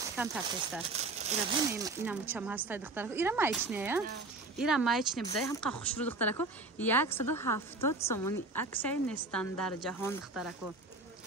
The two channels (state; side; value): quieter; left; 3.2 dB